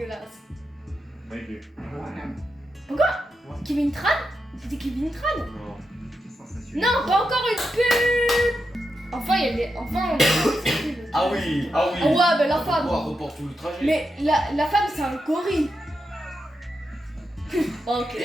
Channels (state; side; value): normal; both; correlation 0.86